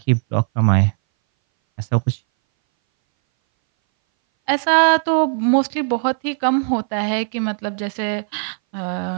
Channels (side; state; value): left; silent; 61 dB below the other